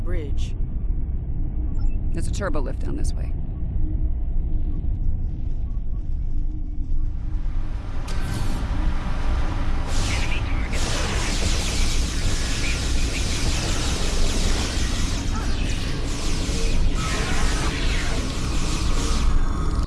There's a turbo lift down this way.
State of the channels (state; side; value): identical; both; correlation 1.00